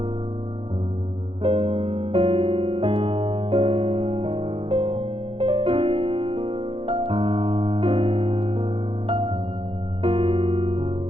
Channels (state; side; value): late; left; 0.27 ms